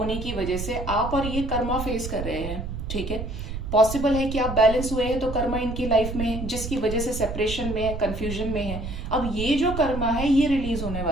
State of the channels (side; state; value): right; noise; rumble, 6 dB below the sound